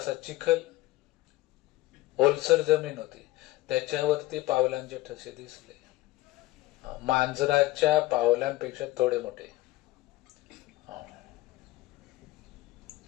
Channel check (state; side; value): quieter; right; 17.9 dB